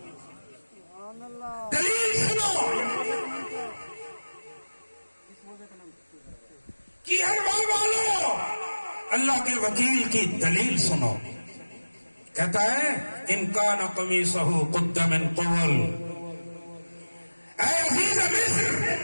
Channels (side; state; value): both; inverted; correlation -1.00